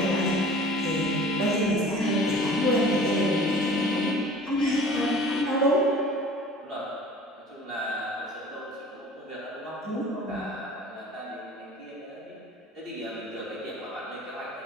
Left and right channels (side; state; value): both; normal; correlation 0.45